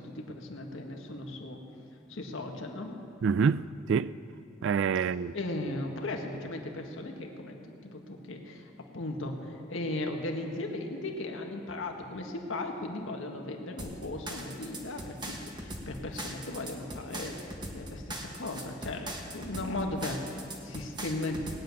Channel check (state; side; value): normal; both; correlation 0.38